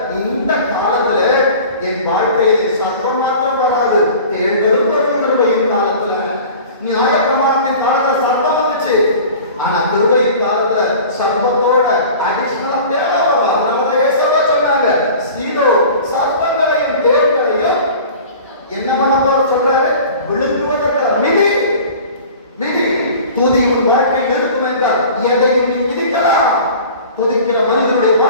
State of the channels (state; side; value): inverted; both; correlation -0.41